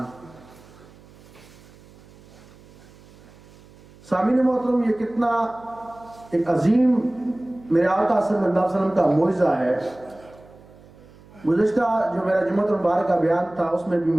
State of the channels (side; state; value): right; noise; hum, 24 dB below the sound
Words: سامعین محترم، یہ کتنا ایک عظیم میرے آقا صلی اللہ علیہ وسلم کا معجزہ ہے. گزشتہ جو میرا جمعۃ المبارک کا بیان تھا اس میں بھی